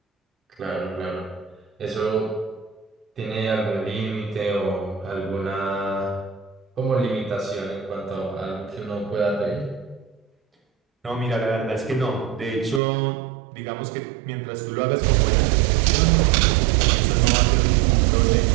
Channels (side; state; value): left; drops out; at 12.8 s